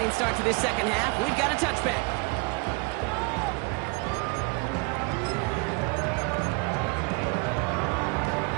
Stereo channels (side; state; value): left; quieter; 32.2 dB